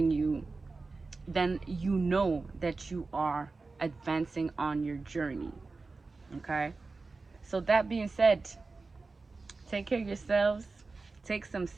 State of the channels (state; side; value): quieter; left; 3.8 dB